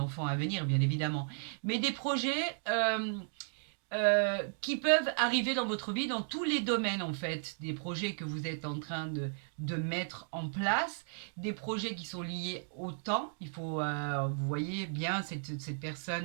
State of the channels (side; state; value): left; silent; digital silence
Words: à venir, bien évidemment. Mais des projets qui peuvent arriver dans votre vie dans tous les domaines en fait, des projets que vous êtes en train de mettre en place, des projets qui sont liés au temps. Il faut, vous voyez bien cette